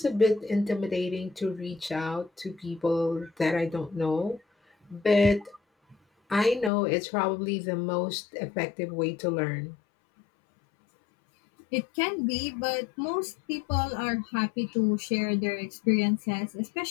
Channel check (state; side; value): drops out; right; at 6.7 s